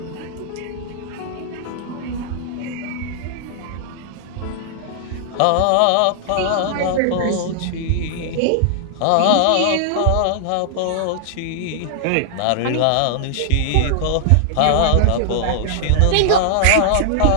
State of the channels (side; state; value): both; different; correlation -0.01